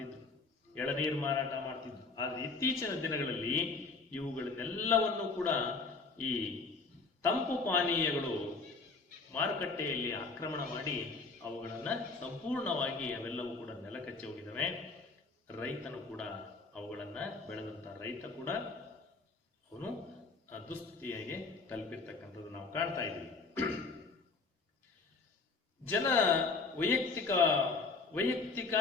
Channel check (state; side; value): quieter; right; 4.1 dB